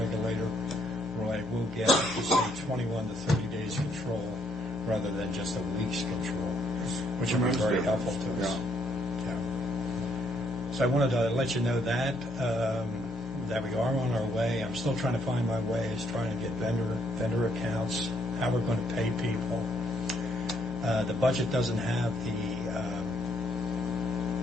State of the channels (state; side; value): normal; both; correlation 0.70